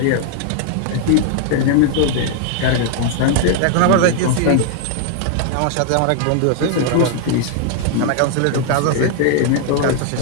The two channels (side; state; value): both; different; correlation 0.00